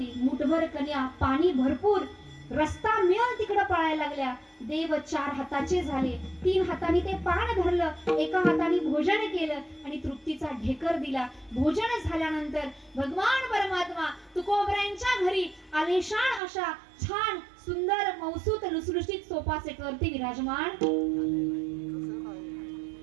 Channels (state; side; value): drops out; left; at 16.4 s